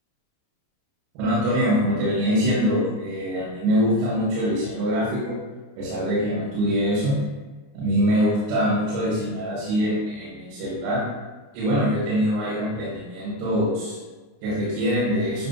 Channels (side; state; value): left; late; 29 ms